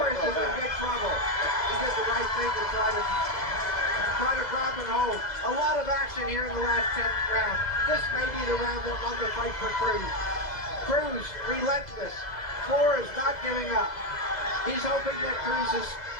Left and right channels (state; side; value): late; right; 2.0 ms